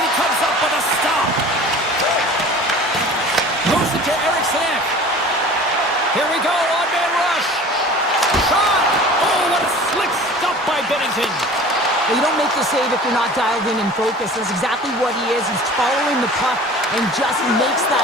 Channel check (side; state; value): both; normal; correlation 0.42